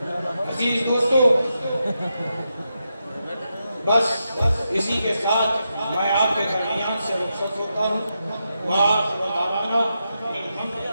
عزیز دوستو بس اسی کے ساتھ میں آپ کے درمیان سے رخصت ہوتا ہوں۔ وآخر دعوانا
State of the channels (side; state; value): both; inverted; correlation -0.86